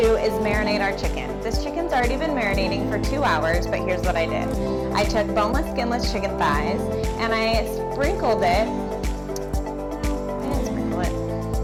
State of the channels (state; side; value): identical; both; correlation 1.00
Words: is marinate our chicken. This chicken's already been marinating for 2 hours, but here's what I did. I took boneless, skinless chicken thighs and I sprinkled it. No, I didn't sprinkle it.